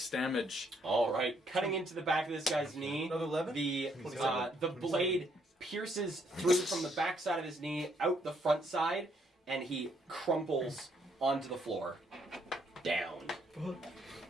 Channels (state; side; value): normal; both; correlation 0.71